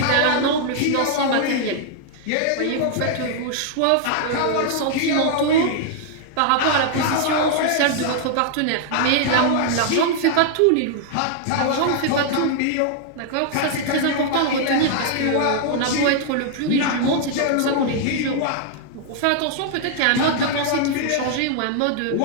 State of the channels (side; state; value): both; different; correlation 0.00